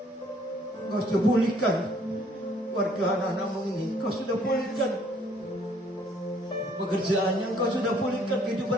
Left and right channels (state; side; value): normal; both; correlation 0.62